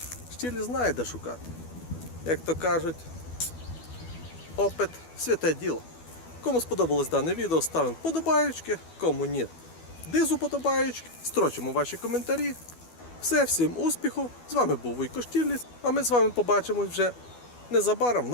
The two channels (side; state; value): right; late; 12 ms